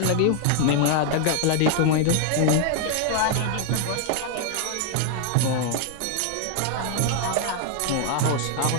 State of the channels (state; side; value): different; both; correlation 0.00